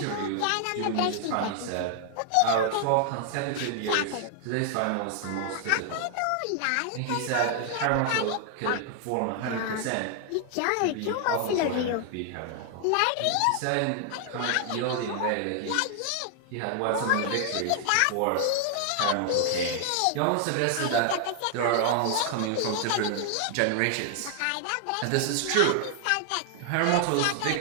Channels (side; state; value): both; different; correlation 0.00